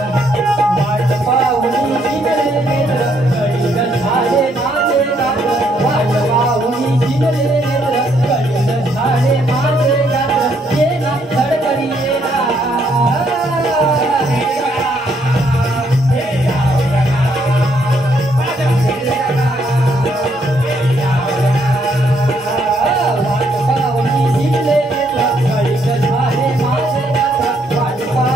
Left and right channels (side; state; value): both; normal; correlation 0.71